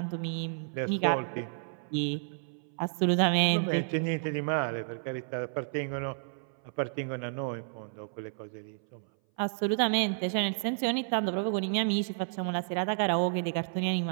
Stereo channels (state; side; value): silent; left; 57 dB below the other